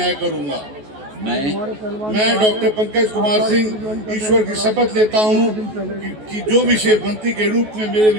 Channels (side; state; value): left; late; 14 ms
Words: करूंगा। मैं डॉक्टर पंकज कुमार सिंह ईश्वर की शपथ लेता हूं कि जो विषय मंत्री के रूप में मेरे